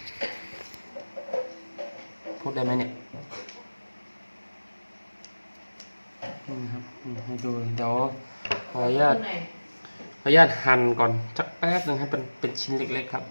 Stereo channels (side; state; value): both; inverted; correlation -1.00